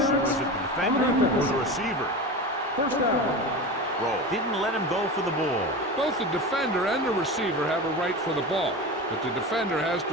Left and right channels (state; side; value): normal; both; correlation 0.27